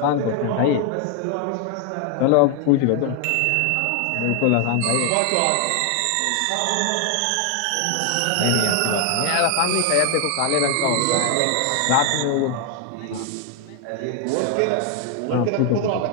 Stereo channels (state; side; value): different; both; correlation 0.00